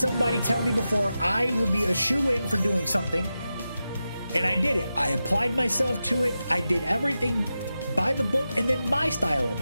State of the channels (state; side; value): inverted; both; correlation -0.91